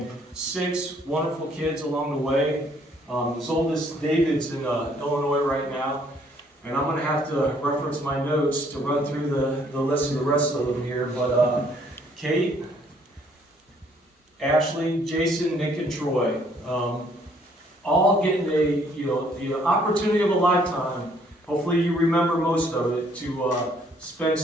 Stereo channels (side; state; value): both; normal; correlation 0.64